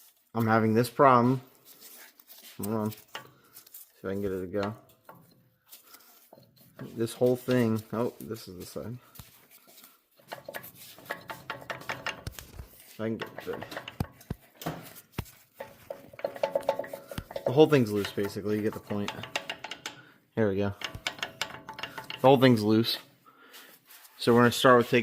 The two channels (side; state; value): both; identical; correlation 1.00